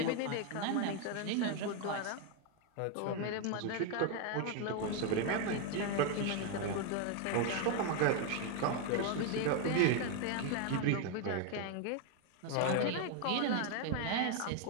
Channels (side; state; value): both; different; correlation 0.01